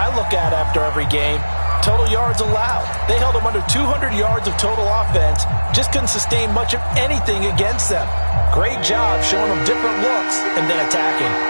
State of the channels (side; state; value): both; inverted; correlation -1.00